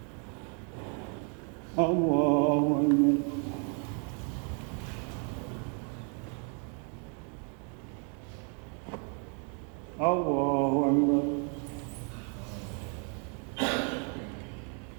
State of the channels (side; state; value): left; quieter; 39.8 dB